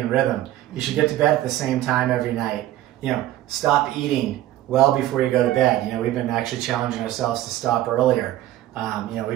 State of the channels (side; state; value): left; quieter; 14.2 dB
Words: rhythm. You should get to bed at the same time every night. You know, stop eating well before you go to bed. You know, we've been actually challenging ourselves to stop earlier. You know,